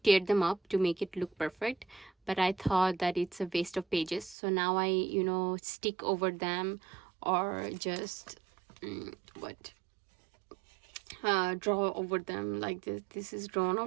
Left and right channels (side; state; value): left; drops out; at 4.4 s